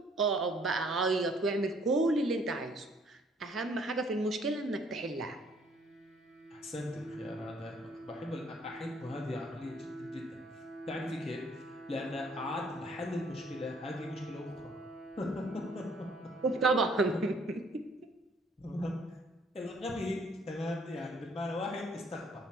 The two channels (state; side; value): normal; both; correlation 0.62